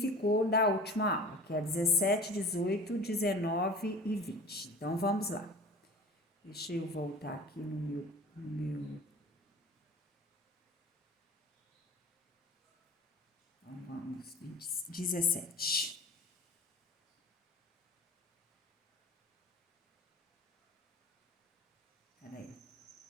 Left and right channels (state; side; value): normal; both; correlation 0.39